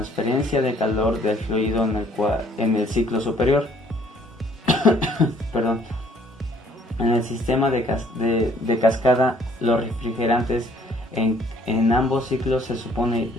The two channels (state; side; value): normal; both; correlation 0.61